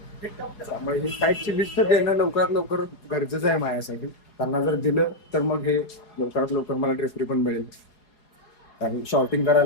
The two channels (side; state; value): right; late; 4.8 ms